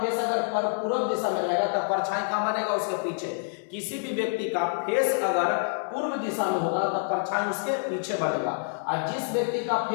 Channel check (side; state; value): right; silent; digital silence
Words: अगर पूरब दिशा में रहेगा तो परछाई कहाँ बनेगा? उसके पीछे। किसी भी व्यक्ति का फेस अगर पूर्व दिशा में होगा तो परछाई उसके पीछे बनेगा। और जिस व्यक्ति का